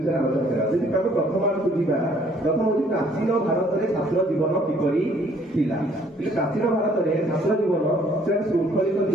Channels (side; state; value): both; normal; correlation 0.61